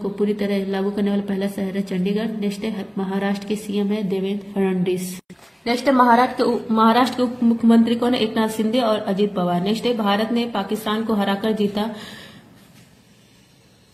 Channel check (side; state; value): both; identical; correlation 1.00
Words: पूरी तरह लागू करने वाला पहला शहर है चंडीगढ़। नेक्स्ट है महाराष्ट्र के सीएम है देवेंद्र फडणवीस। नेक्स्ट है महाराष्ट्र के उप मुख्यमंत्री कौन है? एकनाथ शिंदे और अजित पवार। नेक्स्ट है भारत ने पाकिस्तान को हराकर जीता।